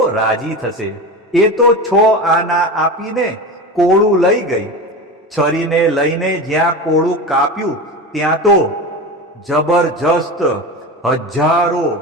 રાજી થશે. એ તો 6 આના આપીને કોળું લઈ ગઈ. છરીને લઈને જ્યાં કોળું કાપ્યું ત્યાં તો જબરજસ્ત હજારો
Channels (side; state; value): both; normal; correlation 0.26